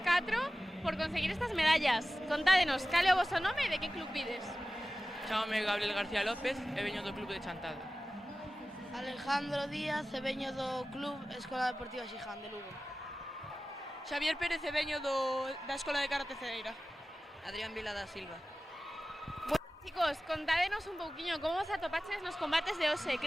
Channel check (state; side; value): normal; both; correlation 0.96